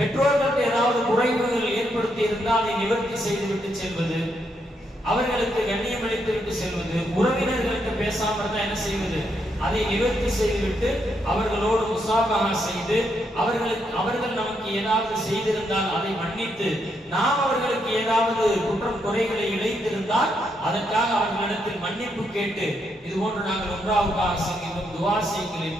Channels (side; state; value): both; normal; correlation 0.78